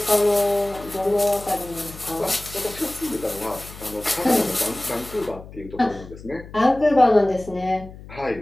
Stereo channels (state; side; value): noise; left; hum, 16 dB below the sound